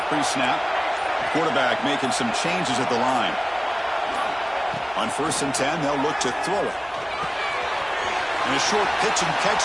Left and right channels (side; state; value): both; identical; correlation 1.00